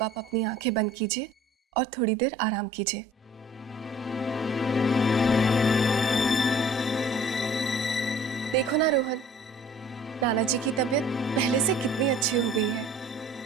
आप अपनी आंखें बंद कीजिए और थोड़ी देर आराम कीजिए। देखो ना रोहन, नाना जी की तबीयत पहले से कितनी अच्छी हो गई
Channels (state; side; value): normal; both; correlation 0.51